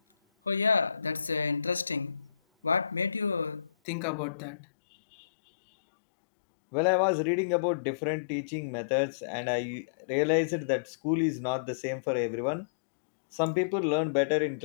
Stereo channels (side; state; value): right; drops out; at 3.7 s